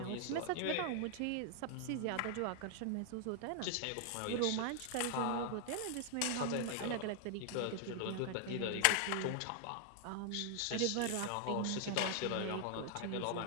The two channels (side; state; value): both; different; correlation 0.00